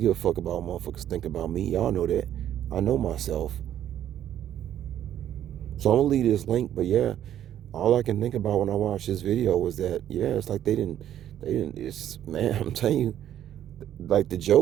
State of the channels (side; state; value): left; quieter; 11.1 dB